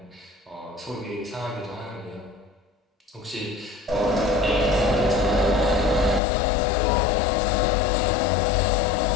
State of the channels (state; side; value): drops out; right; at 6.2 s